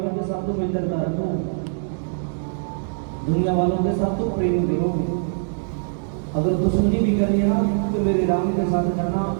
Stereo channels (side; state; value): left; silent; digital silence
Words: के साथ तो मित्रता रखो, दुनिया वालों के साथ तो प्रेम करो। अगर दुश्मनी भी करनी है ना तो मेरे राम के साथ करना।